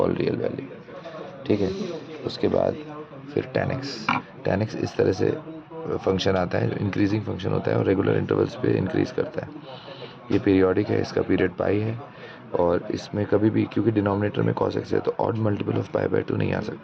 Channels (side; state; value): both; identical; correlation 1.00